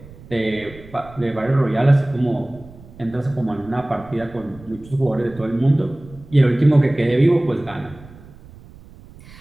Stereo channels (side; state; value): right; noise; rumble, 20 dB below the sound